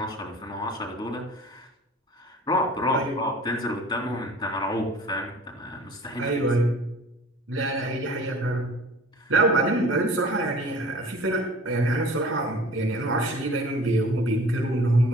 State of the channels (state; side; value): normal; both; correlation 0.45